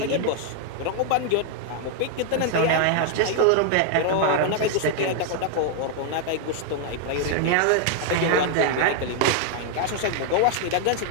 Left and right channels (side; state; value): both; different; correlation 0.00